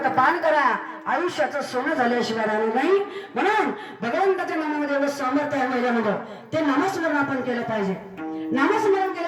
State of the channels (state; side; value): identical; both; correlation 1.00